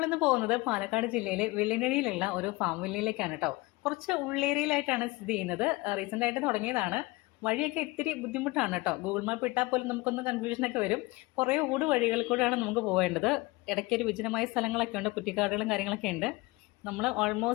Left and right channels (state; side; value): quieter; right; 22.1 dB